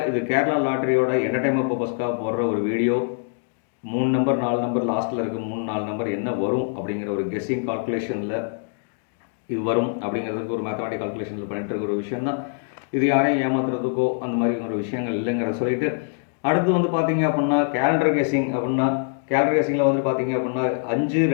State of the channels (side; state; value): right; silent; digital silence